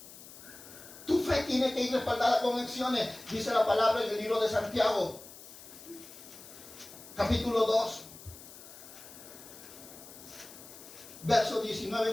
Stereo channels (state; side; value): noise; left; hiss, 17 dB below the sound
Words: Tu fe tiene que ir respaldada con acciones. Dice la palabra en el libro de Santiago. Capítulo 2, verso 19